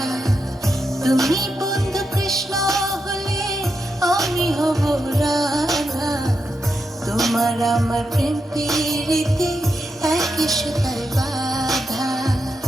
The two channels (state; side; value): normal; both; correlation 0.85